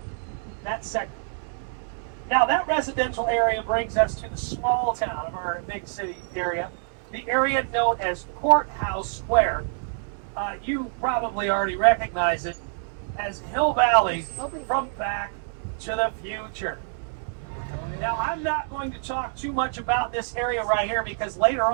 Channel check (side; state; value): left; silent; 61 dB below the other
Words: That segment. Now that residential area brings us to the small town of our big city area, the area known as Courthouse Square. You probably already recognize it as Hill Valley from Back to the Future. Now I'm not going to talk too much about this area right here because later